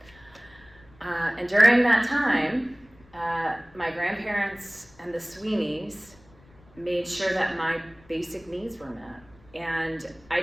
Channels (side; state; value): left; noise; rumble, 27 dB below the sound